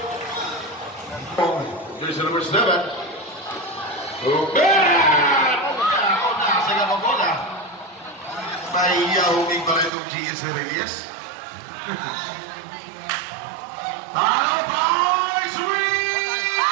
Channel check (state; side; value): drops out; left; at 9.9 s